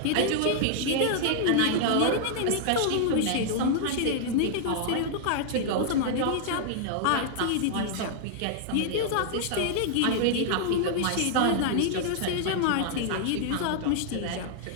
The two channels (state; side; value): different; both; correlation -0.01